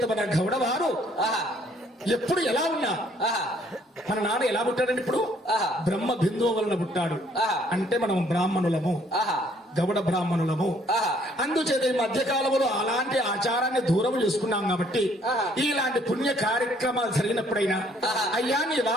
మన గౌడవారు ఎప్పుడు ఎలా ఉన్నా మన నాన్న ఎలా పుట్టాడండి? ఇప్పుడు బ్రహ్మ బిందువు వలన పుట్టాడు. అంటే మనం బ్రాహ్మణులము, గౌడ బ్రాహ్మణులము. అందుచేత ఈ మధ్య కాలంలో అలాంటి ఆచారాన్ని దూరం చేసుకున్నాం కాబట్టి ఇలాంటి పుణ్య కార్యక్రమాలు జరిగినప్పుడైనా అయ్యా నీ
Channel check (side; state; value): both; normal; correlation 0.63